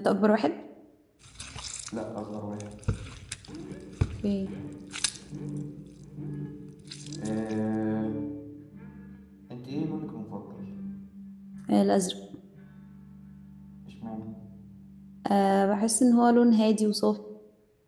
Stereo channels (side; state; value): both; identical; correlation 1.00